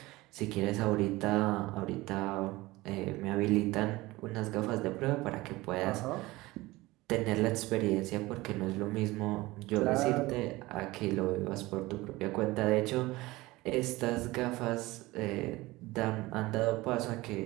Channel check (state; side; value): quieter; left; 20.0 dB